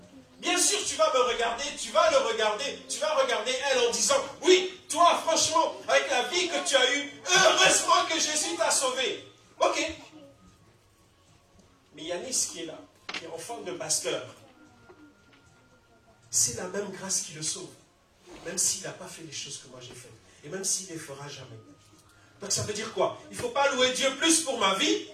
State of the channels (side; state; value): both; identical; correlation 1.00